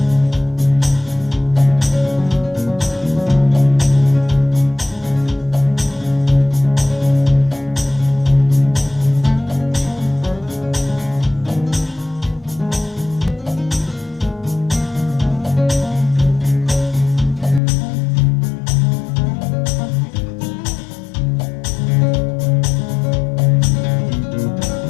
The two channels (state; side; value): drops out; right; at 17.6 s